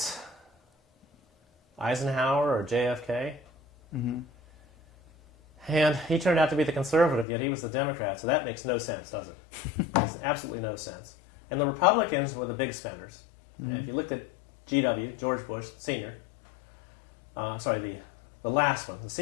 Eisenhower or JFK. And he turned out to be the conservative, yet he was the Democrat, so that makes no sense, does it? Makes absolutely no sense. And the Republicans were the big spenders. If you looked at GW, George Bush Sr., the last one, the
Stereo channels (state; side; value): drops out; right; at 7.2 s